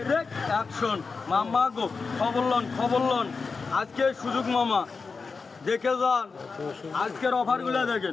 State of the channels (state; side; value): quieter; right; 4.7 dB